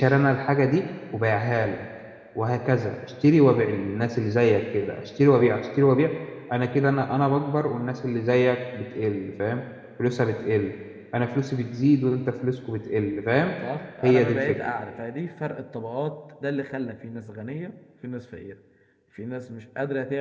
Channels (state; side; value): identical; both; correlation 1.00